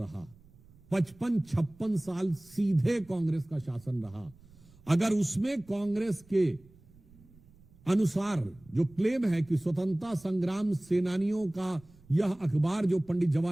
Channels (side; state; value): right; noise; rumble, 26 dB below the sound